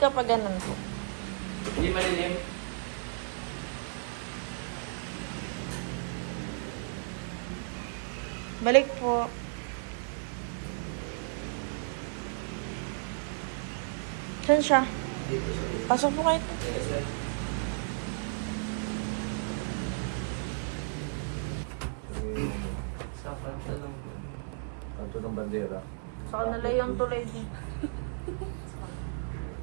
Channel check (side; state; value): left; silent; digital silence